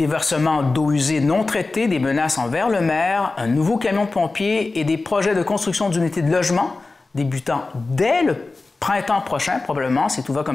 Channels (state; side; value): quieter; right; 3.5 dB